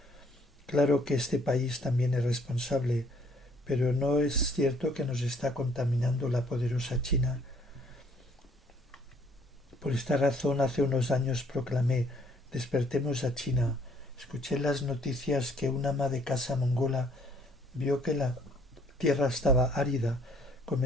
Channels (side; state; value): both; normal; correlation 0.62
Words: Claro que este país también es responsable, pero no es cierto que nos está contaminando la poderosa China. Por esta razón, hace unos años proclamé: despertemos a China. Escuché en las noticias que una ama de casa mongola vio que la tierra estaba árida,